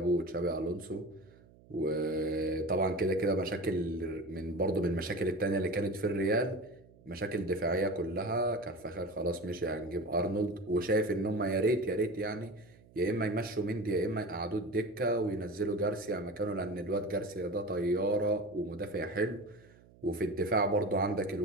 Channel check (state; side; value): noise; right; hum, 25 dB below the sound